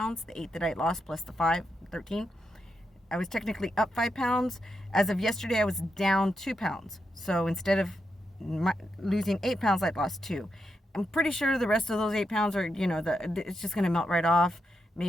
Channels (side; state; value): both; normal; correlation 0.84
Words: the 8 that I lost plus the 5, 13. I was technically up 5 pounds. As of yesterday, I was down 2 pounds. So instead of losing 8 pounds, I'd lost 2. I'm pretty sure the rest of those 8 pounds are, it's just going to melt right off.